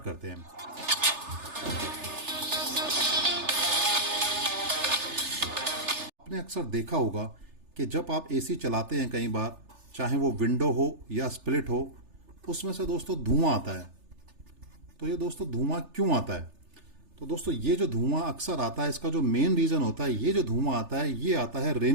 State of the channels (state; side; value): late; left; 3.3 ms